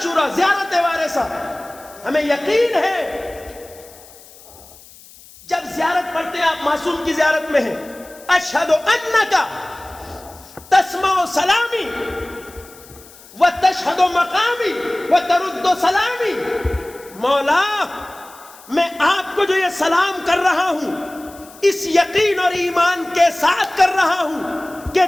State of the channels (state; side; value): noise; left; hiss, 22 dB below the sound